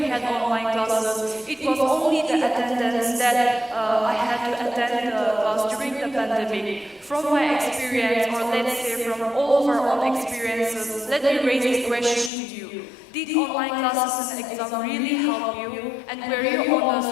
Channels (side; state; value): right; drops out; at 12.3 s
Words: had online classes, it was only the attendance that I had to attend the class during the pandemic. From my experience, or let's say from all of our own experiences, let me raise a question to you. Did online classes and exam really help you? And were you